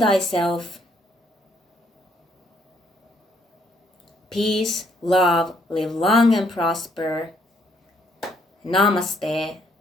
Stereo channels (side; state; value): both; normal; correlation 0.69